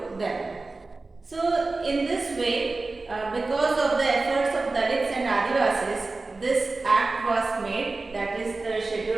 them. So in this way, because of the efforts of Dalits and Adivasis, this act was made, that is the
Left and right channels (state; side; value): quieter; left; 3.5 dB